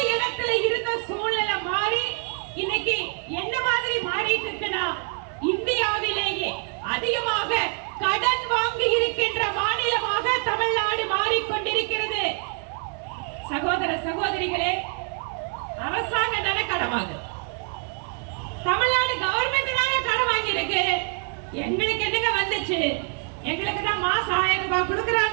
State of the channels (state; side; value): quieter; left; 38.6 dB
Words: இடத்துல இருந்த சூழ்நிலை மாறி இன்னைக்கு என்ன மாதிரி மாறிட்டு இருக்குன்னா இந்தியாவிலேயே அதிகமாக கடன் வாங்கி இருக்கின்ற மாநிலமாக தமிழ்நாடு மாறிக்கொண்டிருக்கிறது. சகோதர சகோதரிகளே, அரசாங்கம் தானே கடன் வாங்குது, தமிழ்நாடு கவர்மெண்ட் தானே கடன் வாங்கி இருக்கு. எங்களுக்கு என்னங்க வந்துச்சு? எங்களுக்கு தான் மாசம் 1000 ரூபாய்